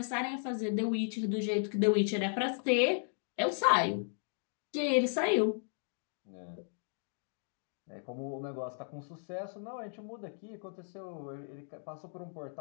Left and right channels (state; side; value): silent; right; digital silence